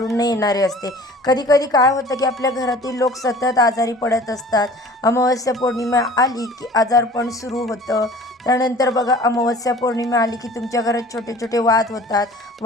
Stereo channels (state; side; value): normal; both; correlation 0.46